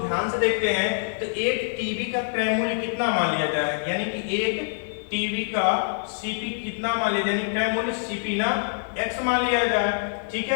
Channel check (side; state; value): right; silent; digital silence